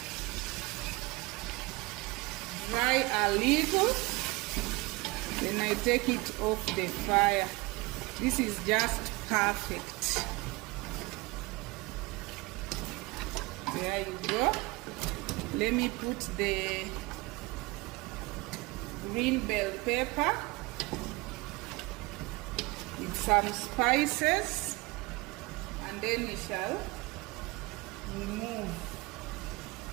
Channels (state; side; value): quieter; left; 23.5 dB